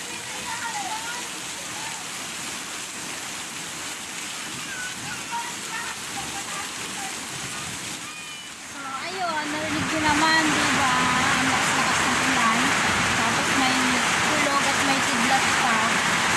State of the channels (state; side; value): identical; both; correlation 1.00